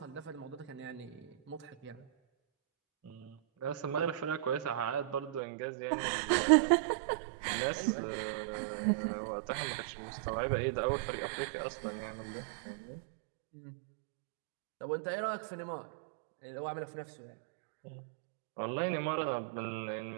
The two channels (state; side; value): drops out; left; at 5.4 s